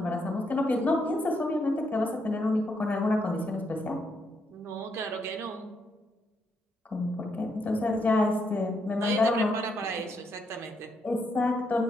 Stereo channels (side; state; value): both; normal; correlation 0.78